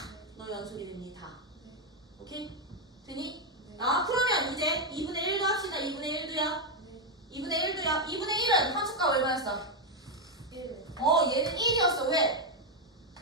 너 연속이 됩니다. 네. 오케이? 되니? 네. 아, 그러면 이제 2분의 1도 합시다. 2분의 1도요. 네. 2분의 1도요. 2분의 1은 함수값 얼마였어? 1. 얘는 1이었어. 왜?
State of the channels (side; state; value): both; normal; correlation 0.03